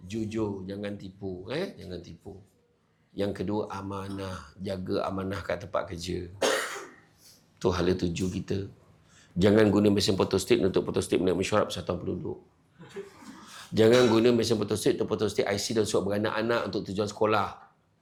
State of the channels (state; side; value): identical; both; correlation 1.00